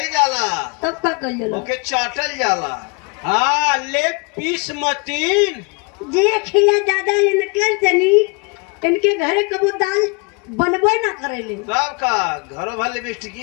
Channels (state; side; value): quieter; right; 32.5 dB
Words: जाला तब का कल जाला ओके चाटल जाला। हाँ लेग पीस मतीन देख लिया दादा इनके तनी इनके घरे कबो दाल बनबे ना करेले। तब का घरों भर लिपस्टिक